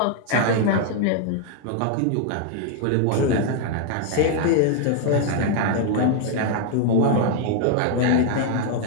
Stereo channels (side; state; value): both; different; correlation 0.00